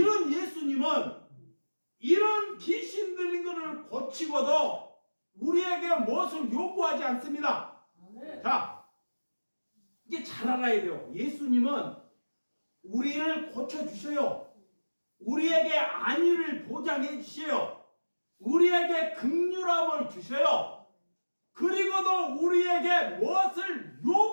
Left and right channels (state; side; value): inverted; both; correlation -1.00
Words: 예수님은 이런 귀신 들린 것을 고치고도 우리에게 무엇을 요구하지 않습니다. 자, 이게 잘 알아야 돼요. 예수님은 우리를 고쳐주셔요. 우리에게 안위를 보장해 주셔요. 우리에게 긍휼함을 주셔요. 그리고도 우리에게 무엇을